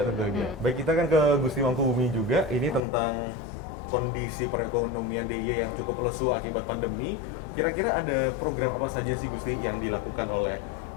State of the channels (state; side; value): drops out; right; at 2.9 s